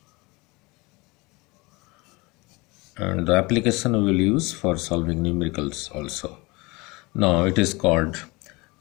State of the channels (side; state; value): right; quieter; 24.7 dB